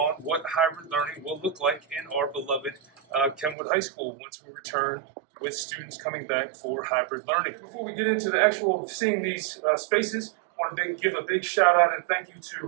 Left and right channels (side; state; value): left; drops out; at 3.6 s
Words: what hybrid learning will look like in our beloved Kenwood High School once we return with students coming back for hybrid learning. Before we get into the actual seeing these spaces, I want to give a big shout out and thank you